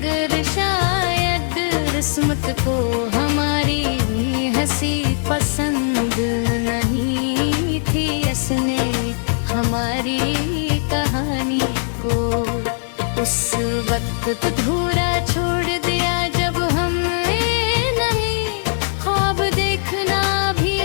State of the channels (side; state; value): right; silent; 66 dB below the other